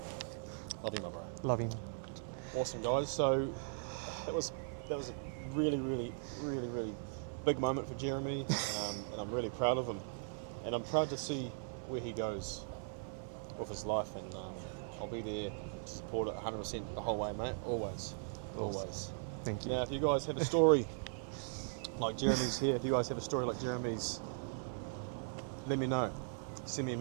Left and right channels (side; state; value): left; silent; 52 dB below the other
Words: Love you, my bro. Loving. Awesome, guys. So that was a really, really, really, really big moment for Jeremy, and I'm really proud of him. And I'm proud to see where he goes with his life, and I'll be there to support it 100% the whole way, mate. Always, always. Thank you. Now, if you guys have a story like Jeremy's here, if you guys have a story like Jeremy's, let me know. Send me a